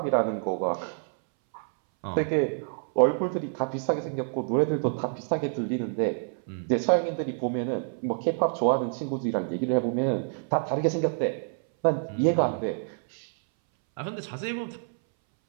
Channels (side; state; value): left; silent; 60 dB below the other